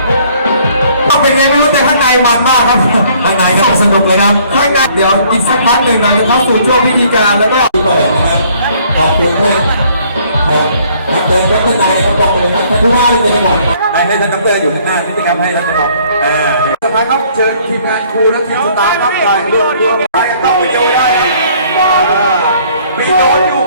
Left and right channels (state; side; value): inverted; both; correlation -0.60